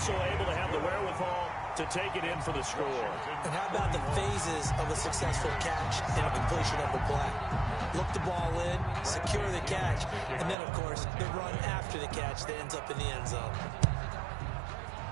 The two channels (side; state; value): left; drops out; at 10.6 s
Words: able to have the wherewithal to take it in for the score. And how about the phases of a successful catch and a completion of the play? Look the ball in, secure the catch, and then, of course, the run after the catch that ends up in the end zone.